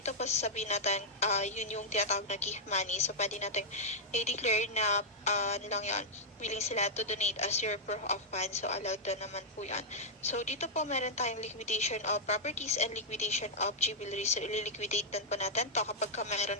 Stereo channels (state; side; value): normal; both; correlation -0.06